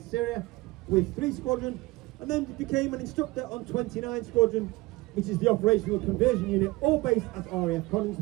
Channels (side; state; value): left; quieter; 21.2 dB